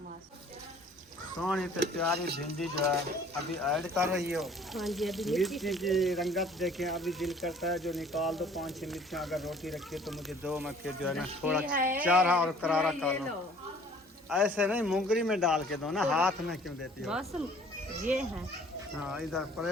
सोनी तो प्यारी भिंडी जो है अभी ऐड कर रही हो। हाँ जी, अभी मिर्ची की रंगत देखें, अभी दिल करता है जो निकाल दो 5-6 मिर्चियाँ अगर रोटी रखी तो मुझे दो में फिर जो है ना थोड़ा चारा और करारा कर लो। ऐसे नहीं मुंगरी में डाल के दो ना, हाथ में क्यों देती हो? बस ये है। हाँ इधर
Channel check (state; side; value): normal; both; correlation 0.53